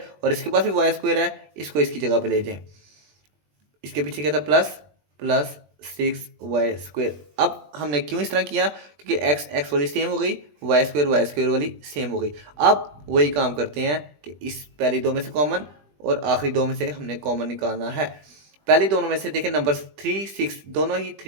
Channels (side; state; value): left; late; 20 ms